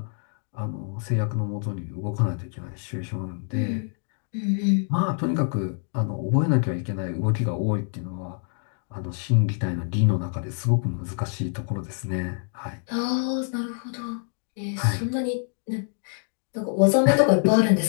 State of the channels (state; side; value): silent; right; 55 dB below the other